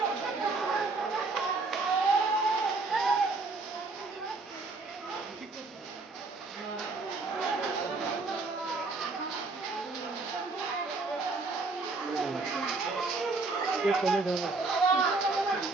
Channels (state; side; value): quieter; left; 3.7 dB